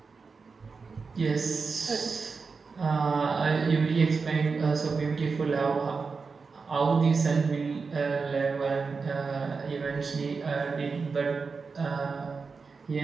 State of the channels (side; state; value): left; quieter; 4.8 dB